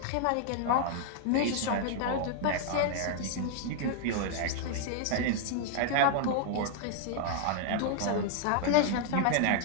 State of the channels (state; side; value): different; both; correlation -0.01